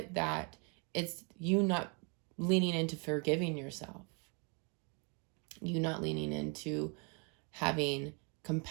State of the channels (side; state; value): left; quieter; 35.5 dB